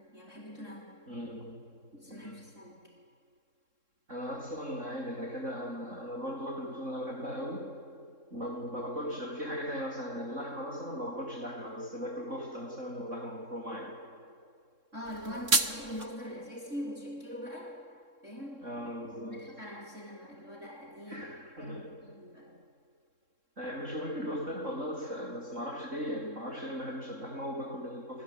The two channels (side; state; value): left; late; 3.7 ms